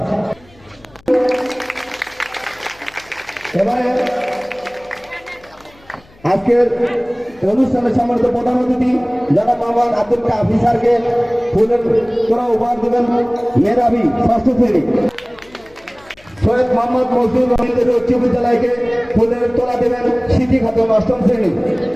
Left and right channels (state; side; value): noise; left; hum, 28 dB below the sound